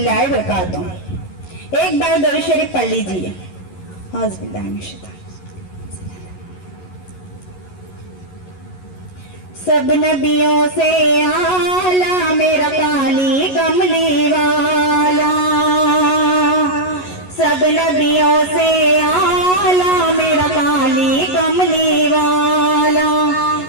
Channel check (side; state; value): right; late; 11 ms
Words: व बरकातहू। एक बार दरूद शरीफ पढ़ लीजिए। सब नबियों से आला मेरा काली कमली वाला, सब नबियों से आला मेरा काली कमली वाला,